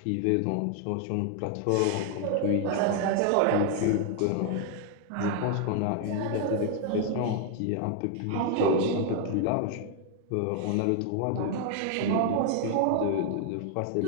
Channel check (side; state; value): both; different; correlation 0.00